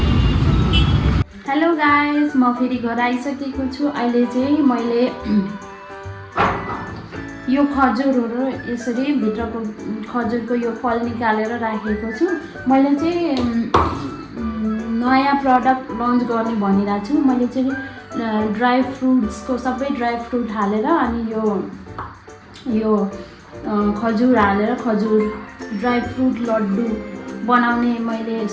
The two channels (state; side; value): identical; both; correlation 1.00